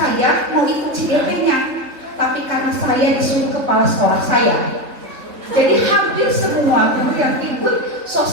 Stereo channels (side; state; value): left; late; 3.6 ms